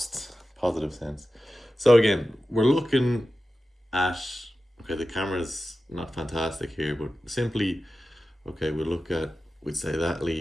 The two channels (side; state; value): both; normal; correlation 0.93